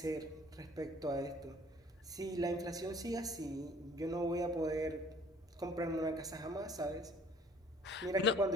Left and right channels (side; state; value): both; normal; correlation 0.55